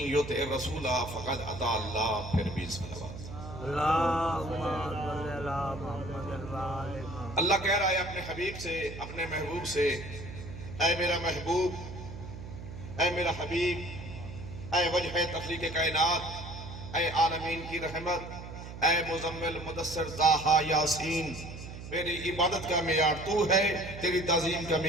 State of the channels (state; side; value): noise; right; hum, 11 dB below the sound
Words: یطع الرسول فقد اطاع اللہ۔ پھر بھی صلوات۔ اللہم صلی علی محمد وآل محمد۔ اللہ کہہ رہا ہے اپنے حبیب سے، اپنے محبوب سے، اے میرا محبوب، اے میرا حبیب، اے وجہ تخلیق کائنات، اے عالمین کی رحمت، اے مزمل مدثر طٰہٰ یاسین، میری عبادت کا معیار تو ہے، تیری تعظیم کا